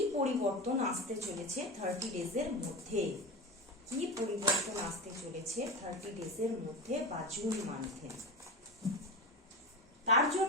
পরিবর্তন আসতে চলেছে 30 ডেজের মধ্যে, কি পরিবর্তন আসতে চলেছে 30 ডেজের মধ্যে বা জুন মান্থে। তার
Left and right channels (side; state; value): both; normal; correlation 0.23